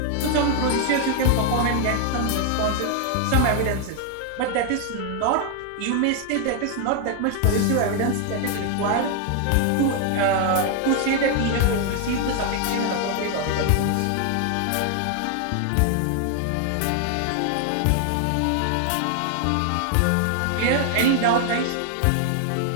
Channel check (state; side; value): different; both; correlation 0.00